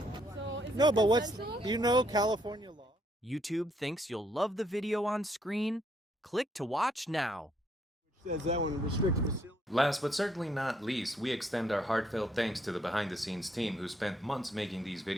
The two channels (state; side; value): normal; both; correlation 0.71